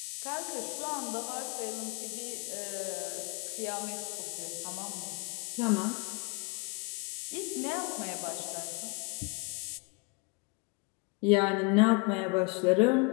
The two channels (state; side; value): quieter; right; 30.4 dB